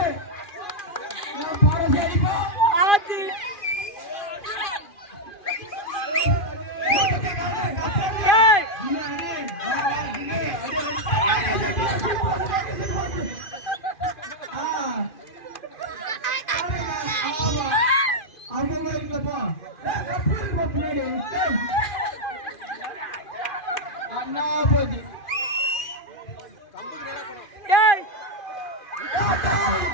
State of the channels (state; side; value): late; right; 2.4 ms